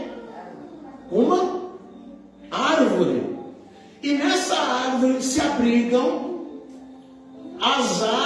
Uma árvore. E nessa árvore se abrigam as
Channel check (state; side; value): identical; both; correlation 1.00